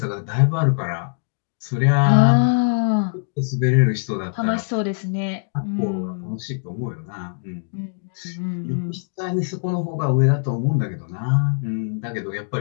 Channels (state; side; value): silent; right; digital silence